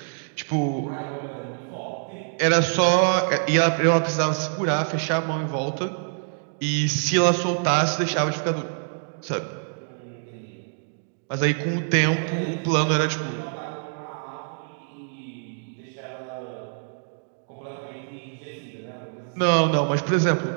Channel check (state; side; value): silent; left; digital silence